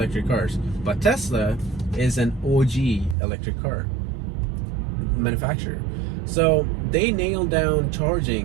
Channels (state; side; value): drops out; left; at 3.2 s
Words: cars, but Tesla is an OG electric car manufacturer. So they nailed down